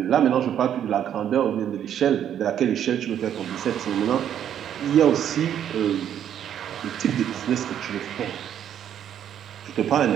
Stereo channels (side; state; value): left; quieter; 9.8 dB